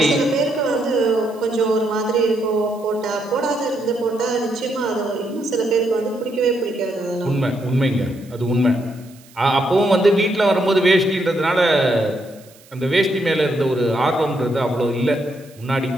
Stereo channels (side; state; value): right; noise; hiss, 26 dB below the sound